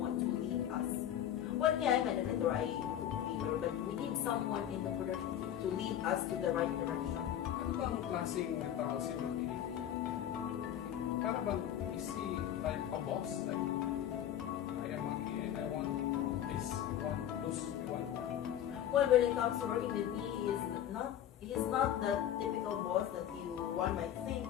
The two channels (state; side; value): quieter; right; 10.7 dB